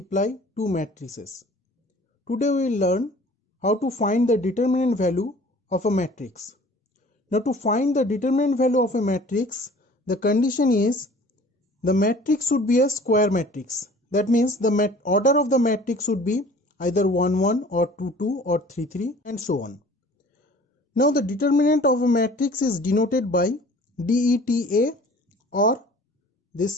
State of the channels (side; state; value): both; normal; correlation 0.48